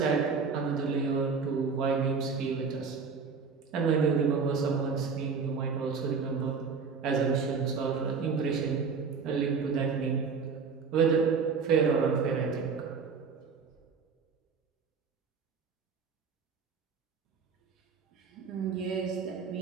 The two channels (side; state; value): left; quieter; 5.4 dB